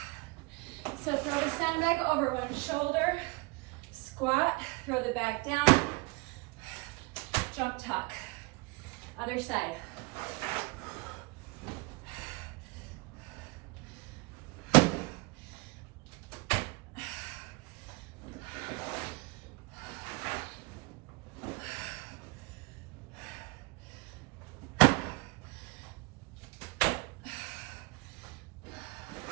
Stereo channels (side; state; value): left; quieter; 25.7 dB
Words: So throw the sandbag over one shoulder, squat, throw the bag down, jump tuck. Other side.